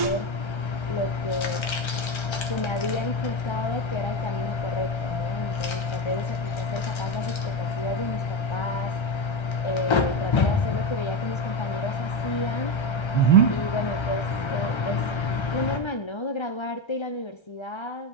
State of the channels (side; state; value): right; late; 1.3 ms